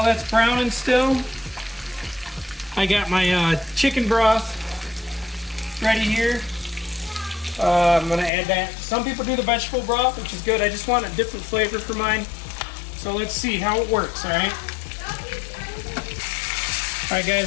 that's browning still, I got my chicken broth ready here. I'm gonna add that. Some people do the vegetable broth, which is good. I just want a different flavor for mine. So let's see how it works, all right? All right,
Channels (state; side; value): drops out; right; at 8.3 s